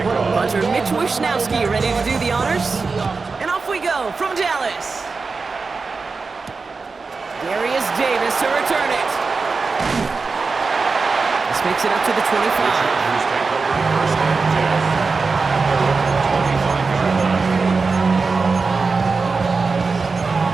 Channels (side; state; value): left; quieter; 4.4 dB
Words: Punter Mitch Wishnowsky ready to do the honors. And off we go from Dallas. Darius Davis to return it. This makes it up to the 25.